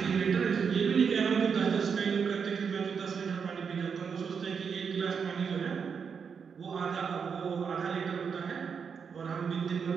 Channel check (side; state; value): left; quieter; 6.3 dB